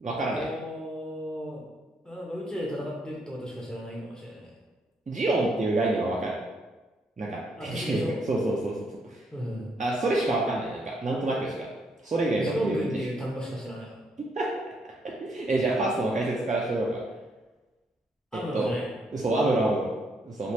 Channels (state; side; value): normal; both; correlation 0.73